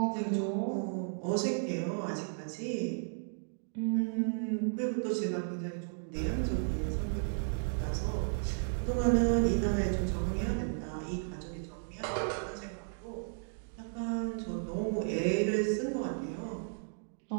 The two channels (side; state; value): left; silent; digital silence